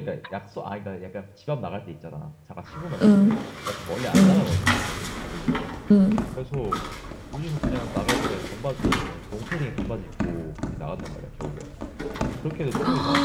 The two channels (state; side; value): identical; both; correlation 1.00